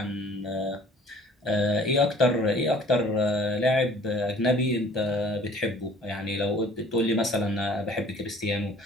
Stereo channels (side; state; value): both; normal; correlation 0.52